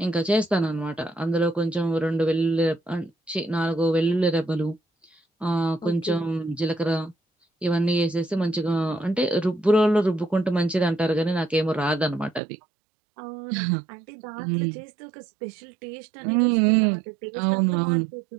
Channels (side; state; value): left; drops out; at 12.4 s